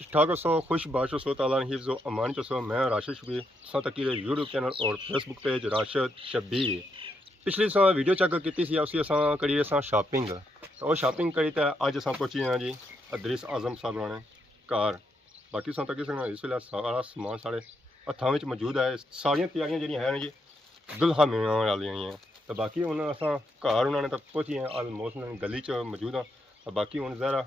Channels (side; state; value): both; normal; correlation 0.79